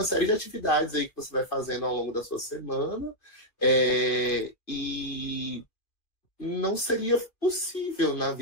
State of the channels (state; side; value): late; right; 2.4 ms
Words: série de atividades aí que você vai fazendo ao longo da sua semana, e não seria possível na